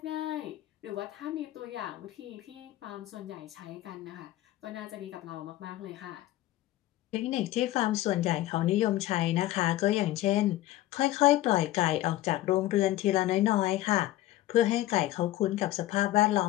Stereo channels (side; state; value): right; quieter; 15.3 dB